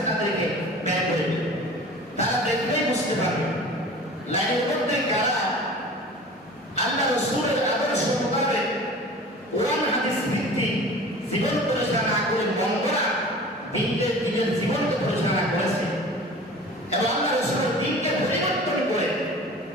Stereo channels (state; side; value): normal; both; correlation 0.40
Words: তাদেরকে ব্যয় করে দিবে। তারা দেখলেই বুঝতে পারবে লাইনের মধ্যে কারা আল্লাহ রাসূলের আদর্শ মোতাবেক কোরআন হাদিস ভিত্তিক জীবন পরিচালনা করে বন্ধরা দিনের জীবনকে পরিচালনা করেছে, এবং আল্লাহ রাসূলের দিনকে পরিবর্তন করে